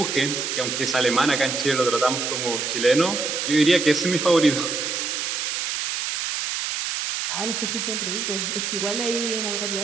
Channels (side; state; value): right; noise; hiss, 2 dB below the sound